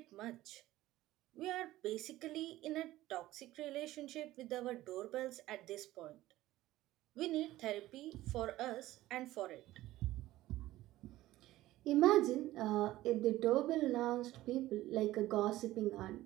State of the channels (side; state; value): left; quieter; 16.1 dB